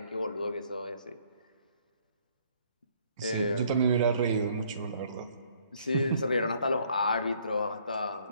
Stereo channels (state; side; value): inverted; both; correlation -0.63